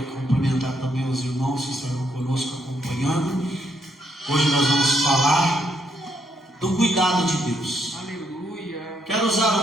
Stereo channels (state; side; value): normal; both; correlation 0.75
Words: cumprimentar também os irmãos que estarão conosco acompanhando. Hoje nós vamos falar do cuidado de Deus. Aleluia. Quero